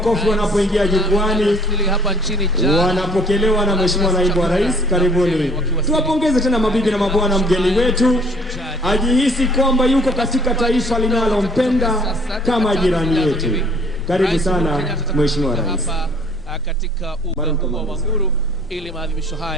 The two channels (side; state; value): both; normal; correlation 0.57